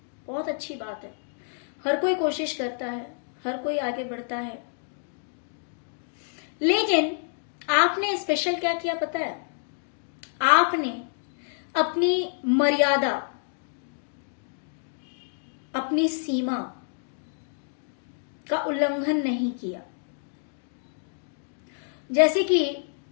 बहुत अच्छी बात है। हर कोई कोशिश करता है, हर कोई आगे बढ़ता है, लेकिन आपने स्पेशल क्या किया पता है? आपने अपनी मर्यादा, अपनी सीमा का उल्लंघन नहीं किया। जैसे कि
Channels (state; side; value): silent; right; digital silence